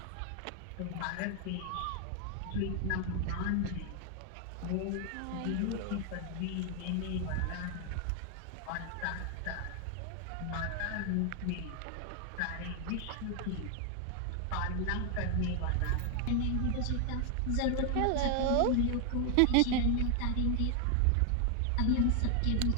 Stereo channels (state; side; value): different; both; correlation 0.00